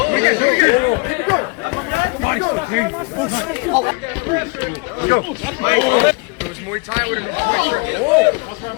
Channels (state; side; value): quieter; right; 29.4 dB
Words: Go. It was Muay Thai with him.